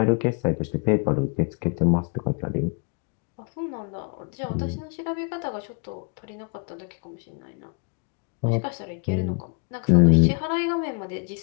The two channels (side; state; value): right; quieter; 36.4 dB